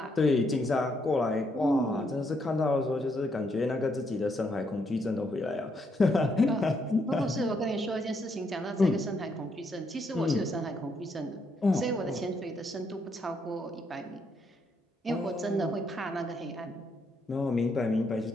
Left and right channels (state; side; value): normal; both; correlation 0.75